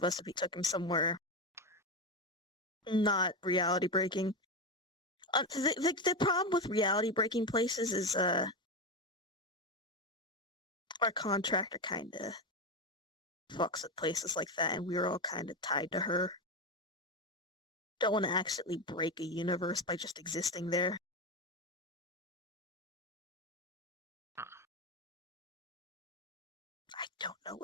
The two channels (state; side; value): normal; both; correlation 0.14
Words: us if we took him somewhere not reality breaking. The problem with reality breaking places is our contractor kind of fucks at places like that, and we're all kind of tied to her. Don't want to accidentally break a universe by just existing there. I don't know